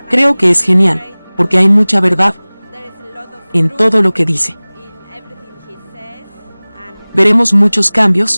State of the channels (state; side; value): inverted; both; correlation -1.00